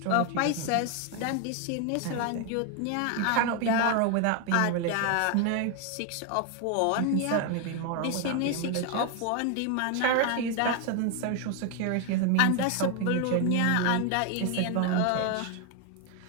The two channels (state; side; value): different; both; correlation 0.01